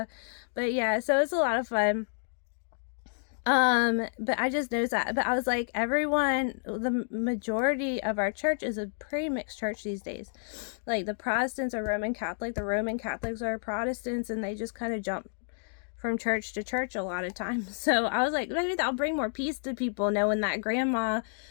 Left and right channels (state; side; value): silent; right; digital silence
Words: yeah, so it's a lot of fun. But I just noticed that. But I was like, the majority of our church is a pretty mixed church these days. Like the Protestants are Roman Catholic, the Roman Catholics are Protestants, and they just kind of jump from church to church a lot of times. So I was like, maybe that'll bring more peace to people, knowing that grandma